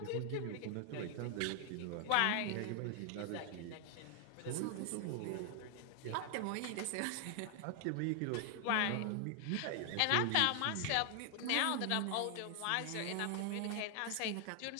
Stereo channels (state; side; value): different; both; correlation 0.00